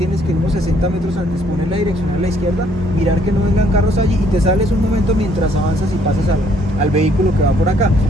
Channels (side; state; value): both; normal; correlation 0.65